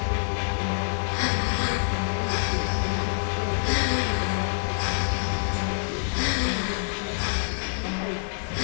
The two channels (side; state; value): right; silent; digital silence